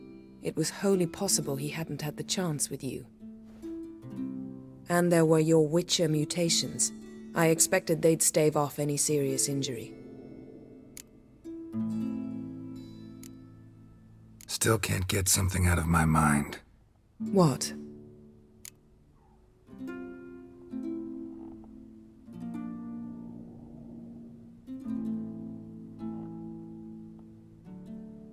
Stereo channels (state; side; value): identical; both; correlation 1.00